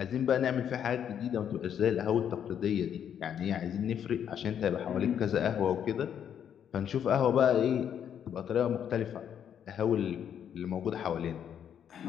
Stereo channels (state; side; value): quieter; right; 8.9 dB